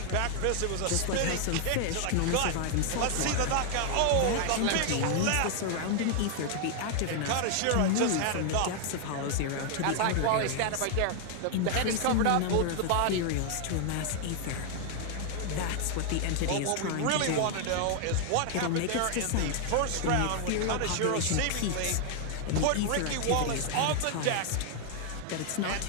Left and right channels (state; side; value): different; both; correlation 0.00